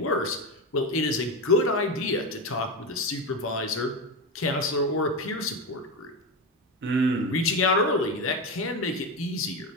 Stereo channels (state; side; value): normal; both; correlation 0.17